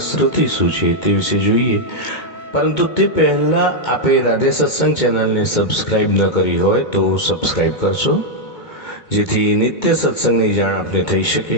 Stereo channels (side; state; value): right; late; 2.2 ms